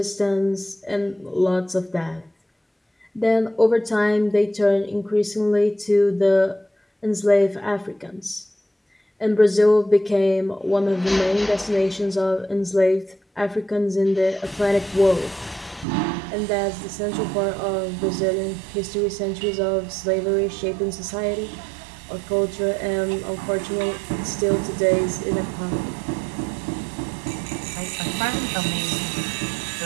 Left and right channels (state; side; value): drops out; left; at 15.9 s